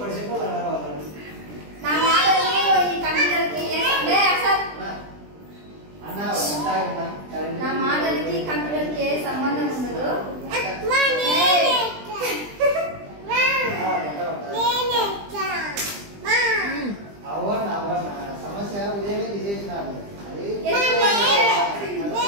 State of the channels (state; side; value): late; left; 20 ms